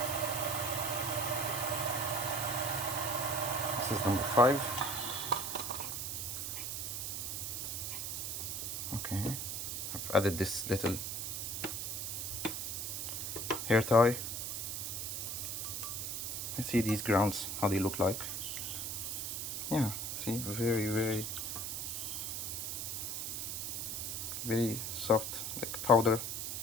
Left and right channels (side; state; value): right; noise; hiss, 3 dB below the sound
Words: This is number 5. Okay, I've added this little hair tie. Let's see these grounds, how they look like. Yeah, see, very, very, very soft, like powder.